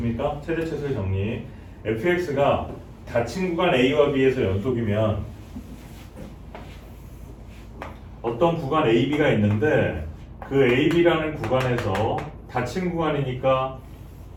최대 최소의 정리. fx가 닫힌 구간 A와 B에서 연속이면 어떤 구간 AB가 있는데 그 AB라는 구간에서 닫힌 구간이니까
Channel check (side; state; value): both; identical; correlation 1.00